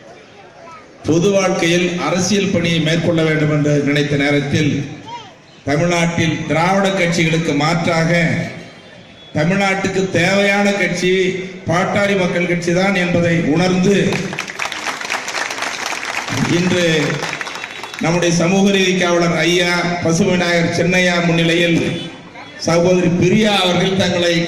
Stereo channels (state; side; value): identical; both; correlation 1.00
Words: பொது வாழ்க்கையில் அரசியல் பணியை மேற்கொள்ள வேண்டும் என்று நினைத்த நேரத்தில் தமிழ்நாட்டில் திராவிட கட்சிகளுக்கு மாற்றாக தமிழ்நாட்டுக்கு தேவையான கட்சி பாட்டாளி மக்கள் கட்சி தான் என்பதை உணர்ந்து இன்று நம்முடைய சமூக நீதி காவலர் ஐயா பசுவிநாயகர் சின்னையா முன்னிலையில் சகோதரி பிரியா அவர்கள் தங்களை